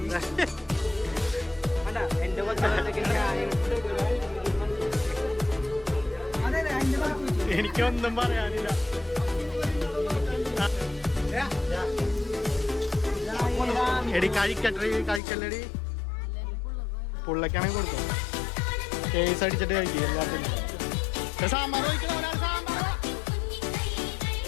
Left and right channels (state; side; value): drops out; right; at 15.2 s